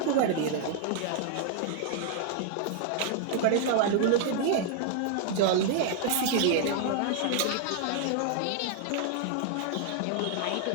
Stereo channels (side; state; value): both; different; correlation 0.00